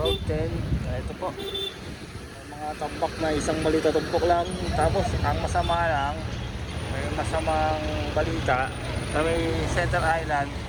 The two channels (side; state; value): both; identical; correlation 1.00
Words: 10. Ito po, may mga tambak na isang balita tumpok lang. Tapos, ang masama lang, may masamang balita sa may Center Island,